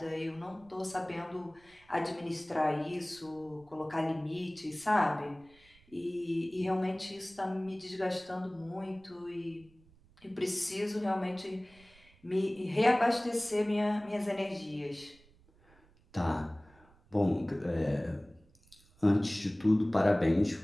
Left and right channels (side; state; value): right; noise; rumble, 28 dB below the sound